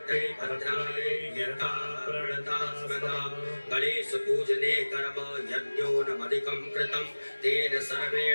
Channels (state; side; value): inverted; both; correlation -1.00